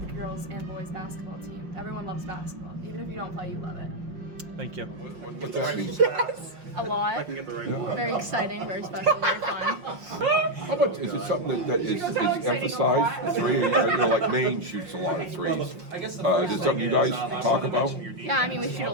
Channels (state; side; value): late; left; 5.5 ms